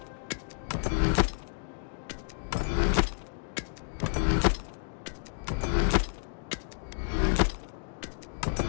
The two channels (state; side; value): silent; right; digital silence